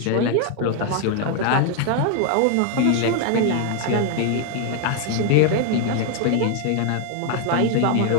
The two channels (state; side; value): different; both; correlation 0.00